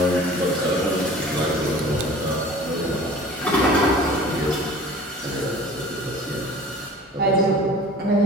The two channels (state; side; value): normal; both; correlation 0.45